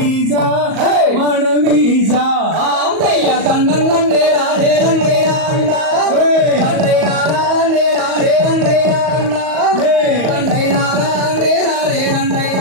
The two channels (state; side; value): late; left; 38 ms